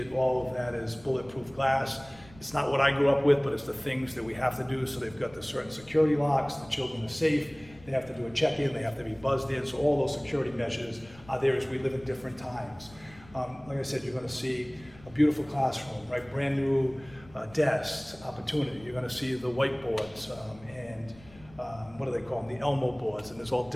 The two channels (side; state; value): left; noise; rumble, 22 dB below the sound